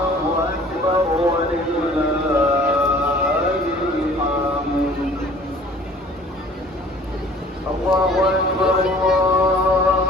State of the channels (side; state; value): both; normal; correlation 0.51